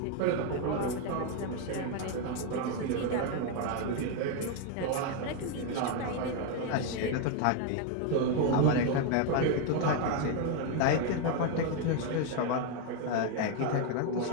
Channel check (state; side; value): different; both; correlation 0.01